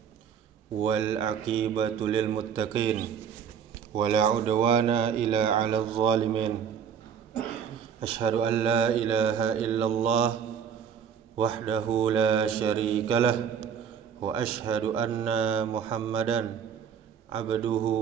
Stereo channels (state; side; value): quieter; left; 7.8 dB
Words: wal aqibatu lil muttaqin, wala udwana illa 'alal zalimin. Ashhadu an la ilaha illallah wahdahu la syarika lah, wa ashhadu anna Muhammadan